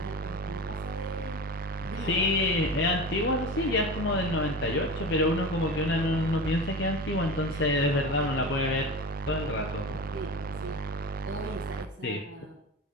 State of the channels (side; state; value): both; normal; correlation 0.30